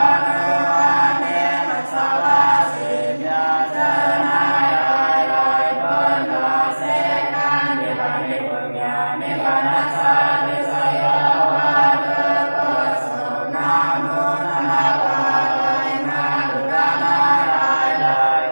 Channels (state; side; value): inverted; both; correlation -1.00